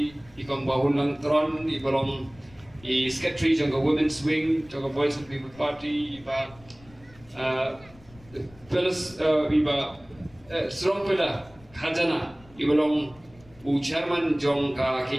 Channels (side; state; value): left; noise; rumble, 25 dB below the sound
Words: ikong bahun lang tron, ibalong secretary jong ke women's wing, jong ke Voice of the People Party, iba strong pillar, khajana, ibalong chairman jong ke